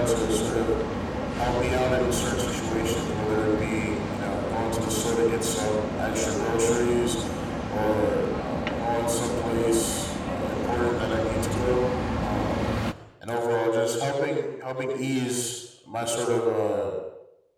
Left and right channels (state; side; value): identical; both; correlation 1.00